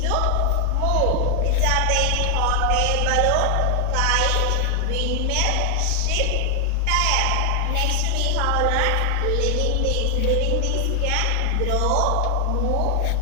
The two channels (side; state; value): both; different; correlation 0.00